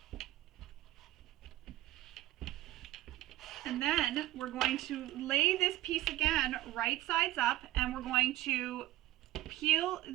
And then we're going to lay this piece again right sides up, and we're going to peel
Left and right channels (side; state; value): left; quieter; 15.6 dB